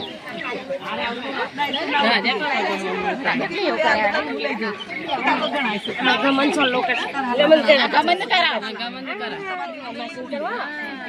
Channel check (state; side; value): identical; both; correlation 1.00